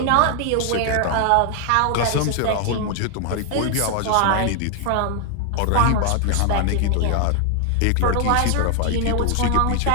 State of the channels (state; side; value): different; both; correlation 0.00